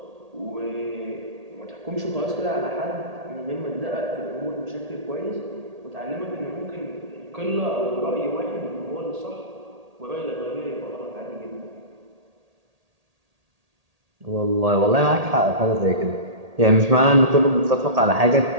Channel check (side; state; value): left; late; 1.8 ms